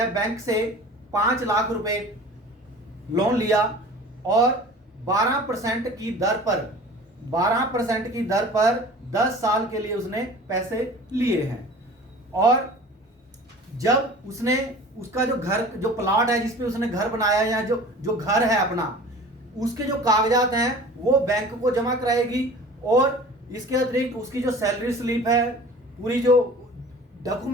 बैंक से 5 लाख रुपए लोन लिया और 12% की दर पर 10 साल के लिए उसने पैसे लिए हैं। और जब उसने उसका जो घर, जो प्लॉट है जिसपे उसने घर बनाया या जो घर है अपना, उसके जो कागजात हैं वो बैंक को जमा कराएगी, और इसके अतिरिक्त उसकी जो सैलरी स्लिप है, पूरी जो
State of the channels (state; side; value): normal; both; correlation 0.42